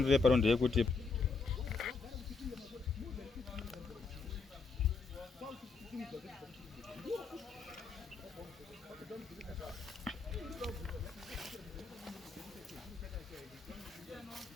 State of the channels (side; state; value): right; quieter; 4.4 dB